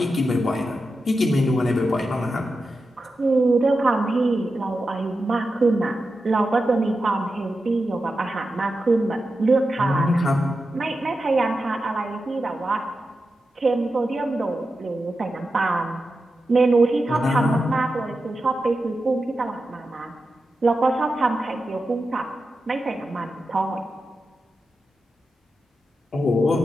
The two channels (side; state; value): both; normal; correlation 0.90